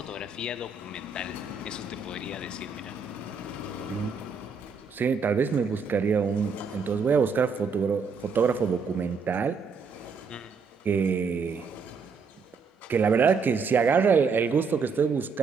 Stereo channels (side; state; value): left; quieter; 5.0 dB